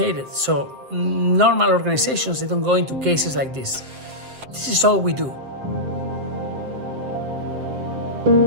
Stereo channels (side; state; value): left; late; 7.7 ms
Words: So normal organizations, they don't go into cases like this. This is all we do.